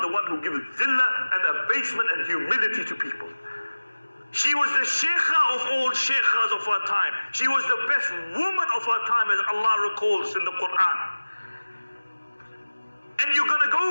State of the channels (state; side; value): inverted; both; correlation -1.00